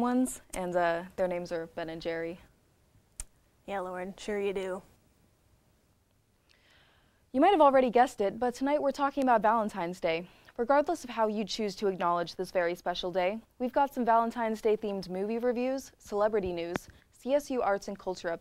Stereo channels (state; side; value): identical; both; correlation 1.00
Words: and their names are Ben and Jerry. Yeah, Lauren, sure you do. You might have already guessed it, but tonight we're talking about Valentine's Day. Regardless of how you choose to acknowledge this very special day, we've got some Valentine's Day themed movie reviews, celebrity news, CSU arts and culture